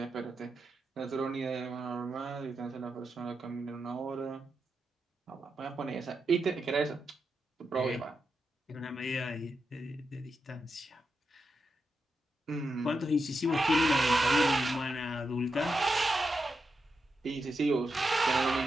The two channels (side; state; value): both; normal; correlation 0.86